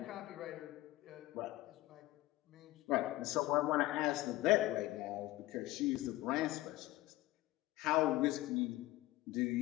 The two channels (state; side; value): quieter; right; 17.4 dB